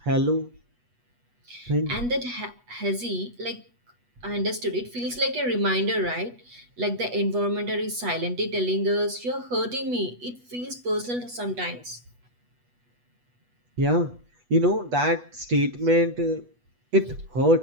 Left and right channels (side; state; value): left; late; 8.2 ms